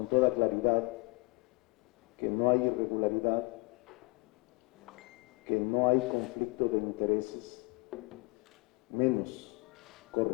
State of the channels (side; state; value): right; quieter; 27.2 dB